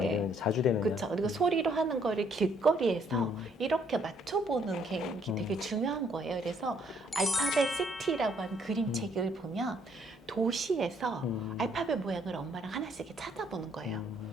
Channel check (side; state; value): both; normal; correlation 0.67